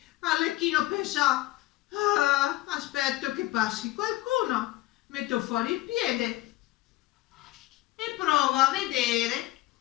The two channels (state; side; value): quieter; right; 17.3 dB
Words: Arlecchino pensò, aspetto che passi qualcuno, metto fuori il piede e provo a vedere